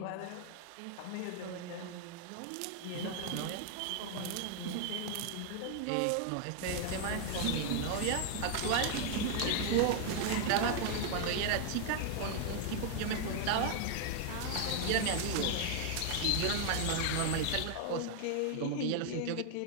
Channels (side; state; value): both; different; correlation 0.00